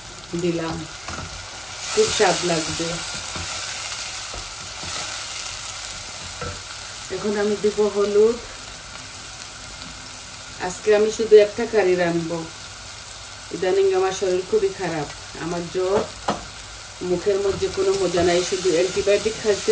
দিলাম, খুব স্বাদ লাগবে। এখন আমি দিব হলুদ। আজকে আমি শুধু একটা কারি রানবো। ইদানিং আমার শরীর খুবই খারাপ, আমার জ্বর, মুখের মধ্যে কোনো মজা নাই, শুধু অ্যান্টিবায়োটিক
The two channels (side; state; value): left; noise; hum, 26 dB below the sound